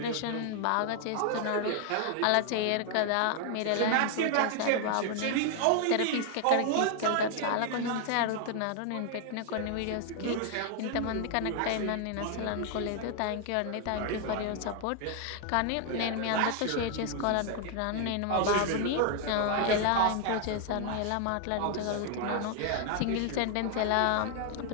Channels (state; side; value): different; both; correlation 0.00